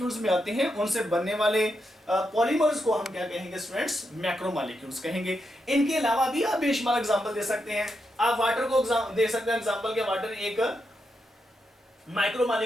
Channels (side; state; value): both; normal; correlation 0.84